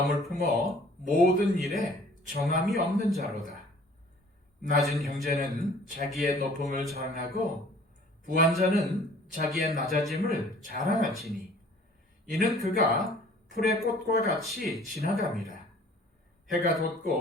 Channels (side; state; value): both; normal; correlation 0.52